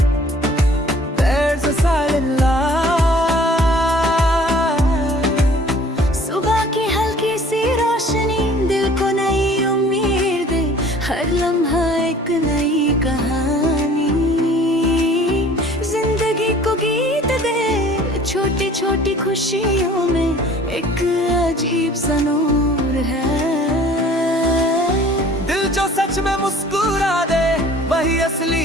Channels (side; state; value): both; normal; correlation 0.51